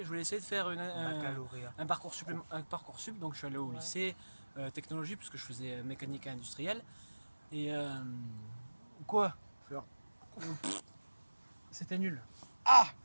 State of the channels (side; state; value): both; inverted; correlation -1.00